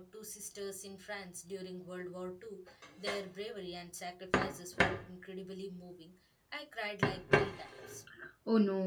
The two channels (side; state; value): both; identical; correlation 1.00